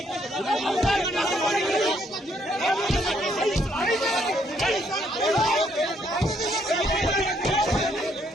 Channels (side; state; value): both; normal; correlation 0.70